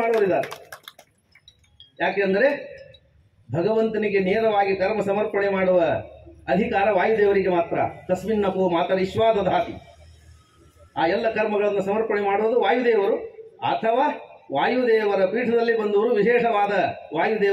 ಮಾಡುವರಿದ್ದಾರೆ. ಯಾಕೆಂದರೆ ಭಗವಂತನಿಗೆ ನೇರವಾಗಿ ಕರ್ಮ ಸಮರ್ಪಣೆ ಮಾಡುವ ಅಧಿಕಾರ ವಾಯುದೇವರಿಗೆ ಮಾತ್ರ. ತಸ್ಮಿನ್ನಪೋ ಮಾತರಿಶ್ವಾ ದಧಾತಿ. ಆ ಎಲ್ಲ ಕರ್ಮಗಳನ್ನು ಸಮರ್ಪಣೆ ಮಾಡುವುದು ವಾಯುದೇವರು ಅಥವಾ ವಾಯುದೇವರ ಪೀಠದಲ್ಲಿ ಬಂದವರು ವಿಶೇಷವಾದ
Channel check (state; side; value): identical; both; correlation 1.00